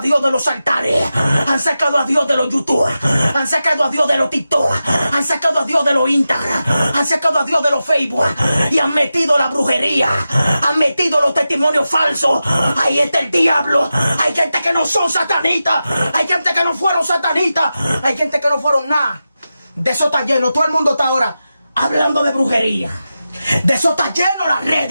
Dios de los altares. Han sacado a Dios de los YouTube. Han sacado a Dios de los TikTok. Han sacado a Dios de los Instagram, han sacado a Dios de los Facebook y han metido la brujería, han metido los testimonios falsos. Ahí está el diablo. Hay gente que no son satanistas, hay gente que no fueron satanistas, hay gente que no fueron nada. De eso está lleno. Todo el mundo está ahora hablando de brujería. De eso está lleno las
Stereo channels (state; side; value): inverted; both; correlation -0.92